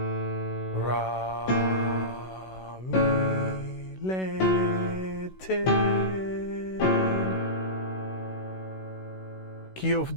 Ra, mi, le, te. Key of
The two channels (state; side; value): late; right; 16 ms